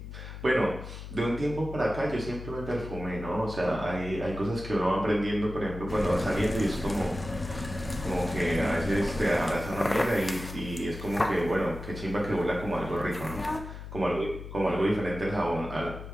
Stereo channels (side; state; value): left; noise; hum, 10 dB below the sound